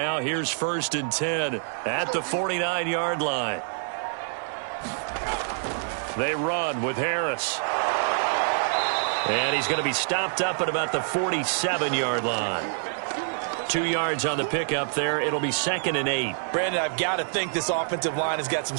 here's 1st and 10 at the 49-yard line. They run with Harris. And he's going to be stopped up at about the 47-yard line. 2 yards on the pickup there. It'll be 2nd and 8. Brandon, I've got to think this offensive line has got some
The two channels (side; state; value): left; silent; 61 dB below the other